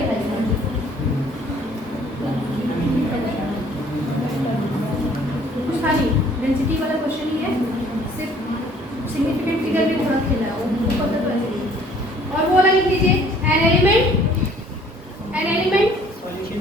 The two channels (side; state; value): both; normal; correlation 0.57